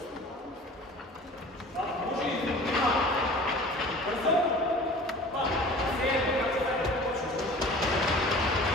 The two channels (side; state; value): both; normal; correlation 0.43